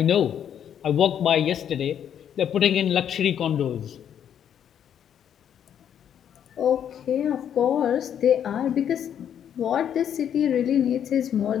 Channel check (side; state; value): right; quieter; 9.2 dB